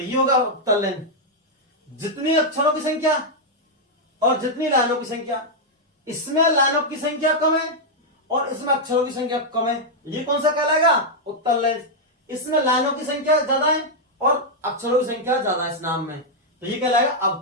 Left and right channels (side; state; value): both; normal; correlation -0.03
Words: होगा उत्तल लेंस। जितनी अक्षरों की संख्या और जितनी लाइनों की संख्या। इसमें लाइनों की संख्या कम है और इसमें अक्षरों की संख्या कम है, ये कौन सा कहलाएगा? उत्तल लेंस। इसमें लाइनों की संख्या ज्यादा है और अक्षरों की संख्या ज्यादा है इस नाम में, तो ये कहलाएगा